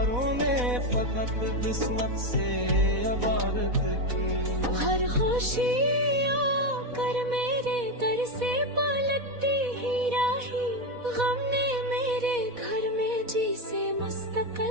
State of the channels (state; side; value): late; left; 4.1 ms